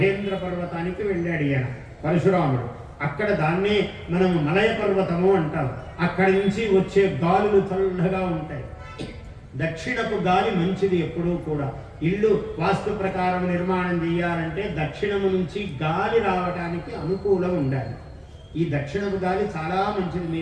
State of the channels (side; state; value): both; identical; correlation 1.00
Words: పర్వతానికి వెళ్ళాడు ఈయన పరశురాముడు. అక్కడ దాన్నే మనం మలయ పర్వతము అంటాం. అక్కడి నుంచి వచ్చే గాలులు చల్లగా ఉంటాయి. దక్షిణపు గాలి మంచిది ఎప్పుడూ కూడా. ఇల్లు వాస్తు ప్రకారం నిర్మాణం చేయాలంటే దక్షిణము నుంచి గాలి రావడానికి అనుకూలం ఉండాలి. ఈ దక్షిణపు గాలి చాలా మంచిది.